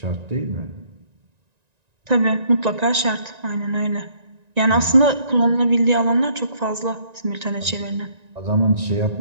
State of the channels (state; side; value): late; left; 1.9 ms